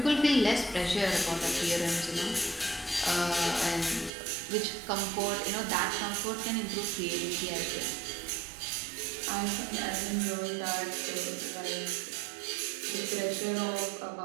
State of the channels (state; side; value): drops out; left; at 4.1 s